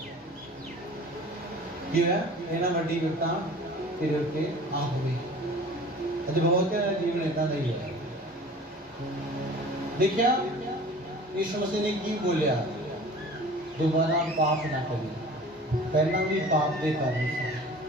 ਕੀ ਹੈ ਇਹਨਾਂ ਵੱਡੀ ਵਿਪਤਾ ਤੇਰੇ ਉੱਤੇ ਆ ਪਵੇ। ਅੱਜ ਬਹੁਤ ਹੈ ਜੀਵਨ ਇਦਾਂ ਦਾ ਹੀ ਹੈ। ਦੇਖਿਆ ਯਿਸੂ ਮਸੀਹ ਨੇ ਕੀ ਬੋਲਿਆ, ਦੁਬਾਰਾ ਪਾਪ ਨਾ ਕਰੀ। ਪਹਿਲਾਂ ਵੀ ਪਾਪ ਦੇ ਕਾਰਨ ਸੀ।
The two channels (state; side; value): normal; both; correlation 0.43